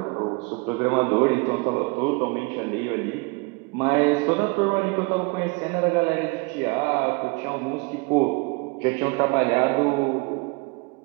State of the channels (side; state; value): left; quieter; 28.6 dB